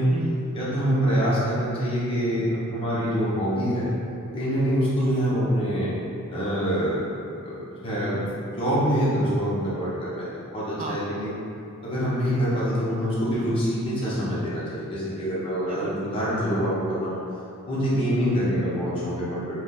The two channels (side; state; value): both; normal; correlation 0.58